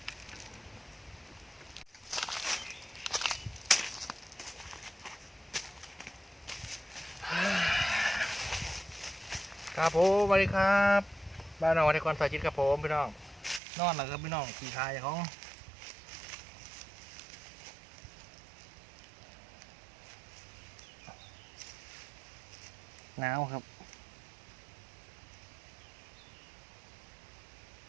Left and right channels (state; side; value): drops out; left; at 13.6 s